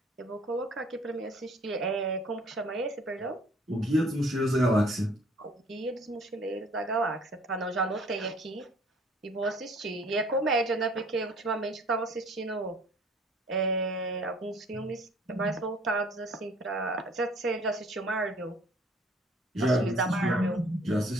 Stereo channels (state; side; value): normal; both; correlation 0.55